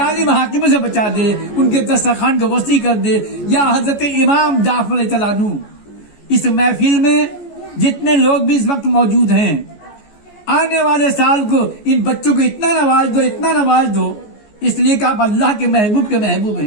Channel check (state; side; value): late; right; 14 ms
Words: حاکموں سے بچا دے، ان کے دسترخوان کو وسیع کر دے۔ یا حضرت امام جعفر رضی اللہ عنہ، اس محفل میں جتنے لوگ بھی اس وقت موجود ہیں، آنے والے سال کو ان بچوں کو اتنا نواز دو، اتنا نواز دو، اس لیے کہ آپ اللہ کے محبوب